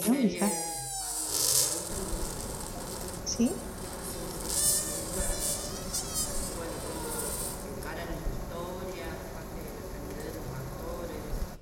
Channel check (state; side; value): identical; both; correlation 1.00